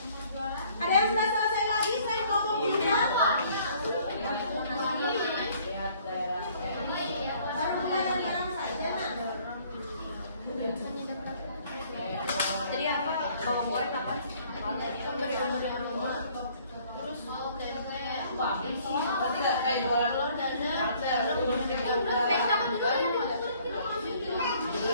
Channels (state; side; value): inverted; both; correlation -0.59